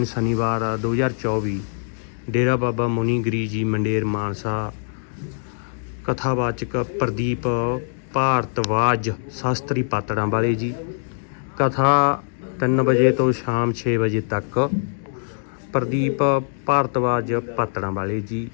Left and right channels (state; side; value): silent; right; digital silence